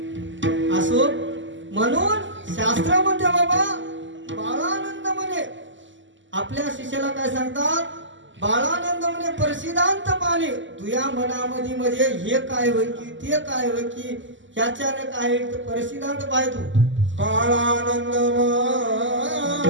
असो. म्हणून शास्त्रामध्ये बाबा बाळानंद म्हणे आपल्या शिष्याला काय सांगतात, बाळानंद म्हणे प्रसिद्धांत पाणी तुया मनामध्ये म्हणजे हे काय होय की ते काय होय की ह्याच्याने काय प्रसिद्धांत पाहतो. बाळानंद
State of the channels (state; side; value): late; left; 0.54 ms